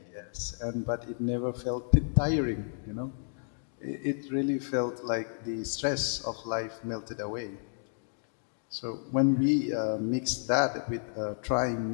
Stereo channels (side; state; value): right; silent; digital silence